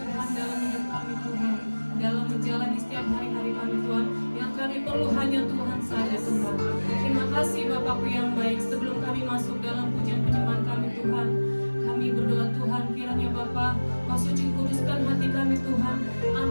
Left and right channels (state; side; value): inverted; both; correlation -1.00